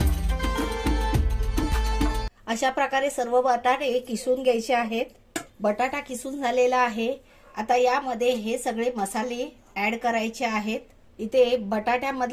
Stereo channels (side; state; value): both; identical; correlation 1.00